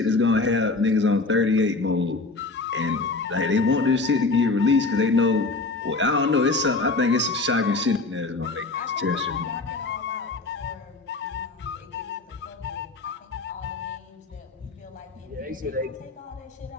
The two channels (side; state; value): right; quieter; 3.6 dB